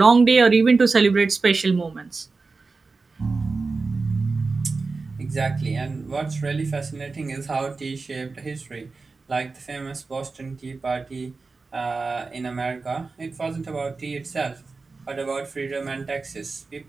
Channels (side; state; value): left; quieter; 4.1 dB